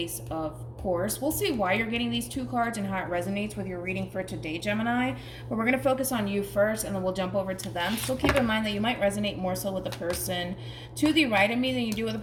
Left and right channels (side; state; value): both; identical; correlation 1.00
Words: of course. We'll see why you're getting these two cards and how it resonates with your reading for today, Gemini. But we're going to focus on you first, and then we'll jump over to them. So keep in mind that you might resonate more so with the person to the right of me than you do with the